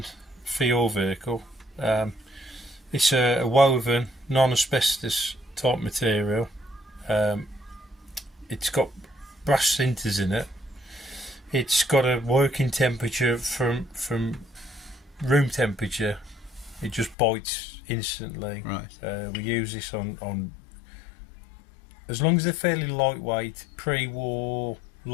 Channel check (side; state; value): right; drops out; at 17.2 s